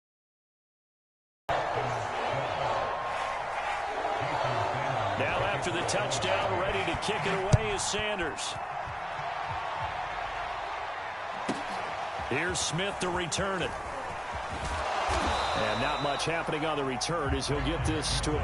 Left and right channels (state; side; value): identical; both; correlation 1.00